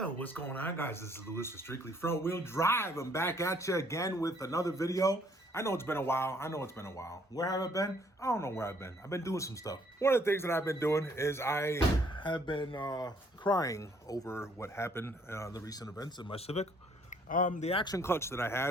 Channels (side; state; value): both; normal; correlation 0.64